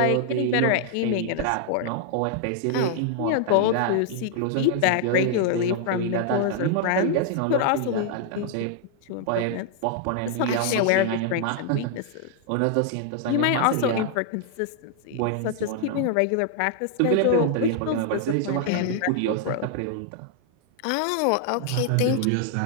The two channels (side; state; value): both; different; correlation 0.00